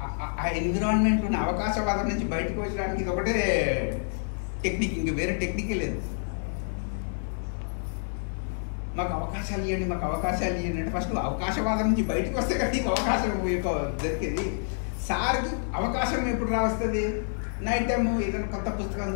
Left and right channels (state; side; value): silent; right; digital silence